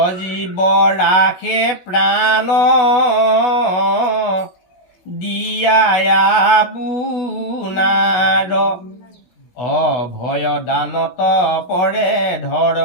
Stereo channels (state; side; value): late; right; 16 ms